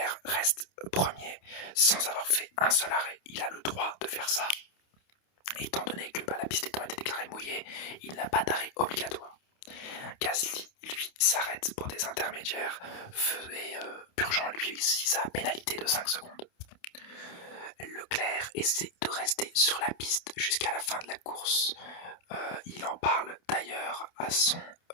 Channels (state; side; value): late; right; 28 ms